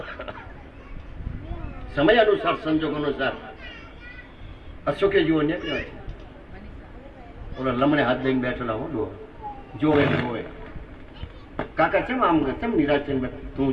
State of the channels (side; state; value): both; identical; correlation 1.00